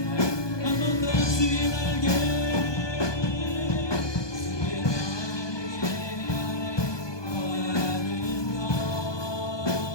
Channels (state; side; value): late; right; 1.2 ms